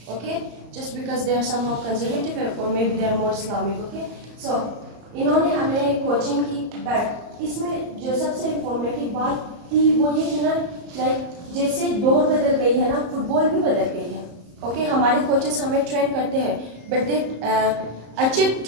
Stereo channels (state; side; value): late; left; 34 ms